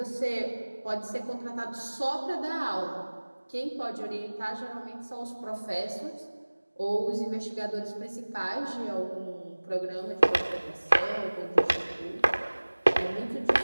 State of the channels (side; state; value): both; inverted; correlation -1.00